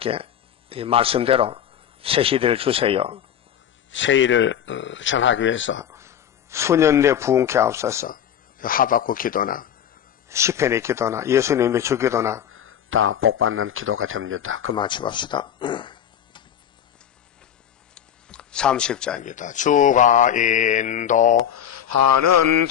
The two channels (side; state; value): right; quieter; 9.7 dB